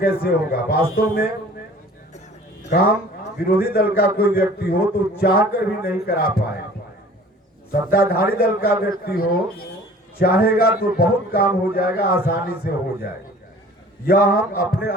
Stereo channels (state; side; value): normal; both; correlation 0.48